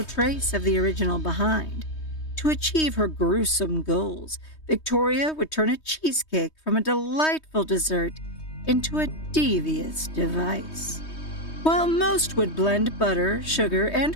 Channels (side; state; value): right; late; 3.2 ms